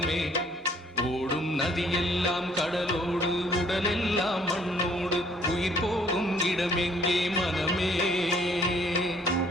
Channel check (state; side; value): normal; both; correlation 0.61